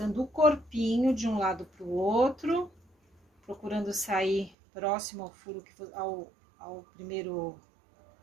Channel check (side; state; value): left; drops out; at 4.5 s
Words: o corpinho de um lado pro outro, procurando sair próximo ao furo ao primeiro